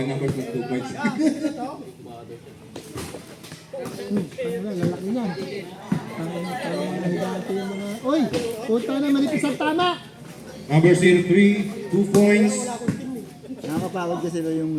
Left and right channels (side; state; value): both; identical; correlation 1.00